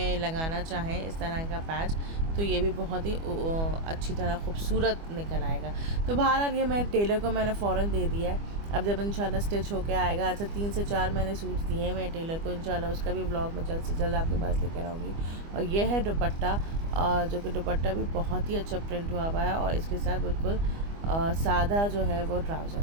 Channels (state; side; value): late; left; 25 ms